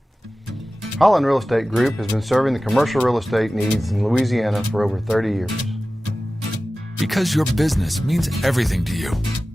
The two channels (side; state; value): both; normal; correlation 0.96